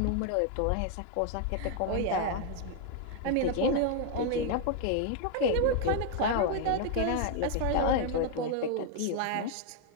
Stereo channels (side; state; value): both; different; correlation 0.00